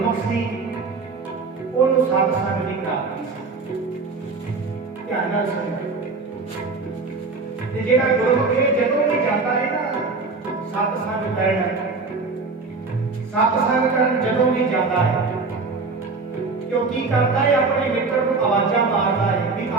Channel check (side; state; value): left; quieter; 4.1 dB